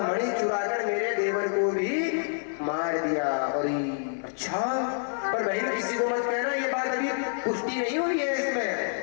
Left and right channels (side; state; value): right; silent; 58 dB below the other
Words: मणि चुराकर मेरे देवर को भी मार दिया। और अच्छा पर बहन किसी को मत कहना, ये बात अभी पुष्टि नहीं हुई है,